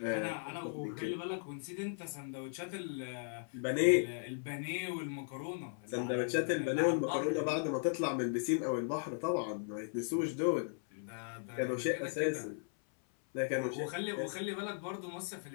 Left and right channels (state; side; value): silent; right; 53 dB below the other